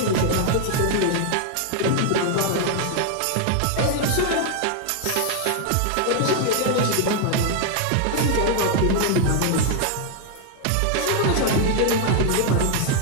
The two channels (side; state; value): both; different; correlation 0.00